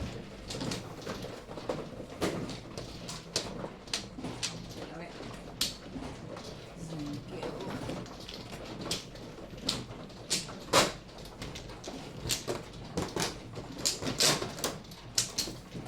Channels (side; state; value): both; identical; correlation 1.00